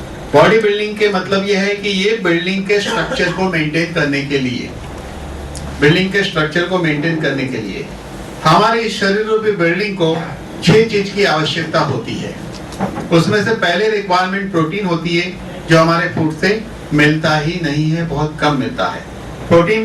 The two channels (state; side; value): identical; both; correlation 1.00